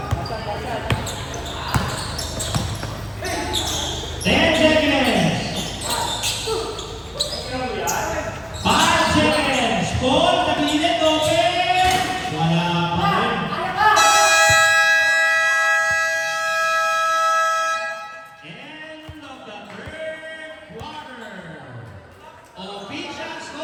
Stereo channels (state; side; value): identical; both; correlation 1.00